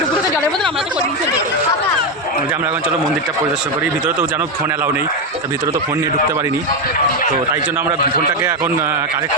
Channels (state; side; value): normal; both; correlation 0.08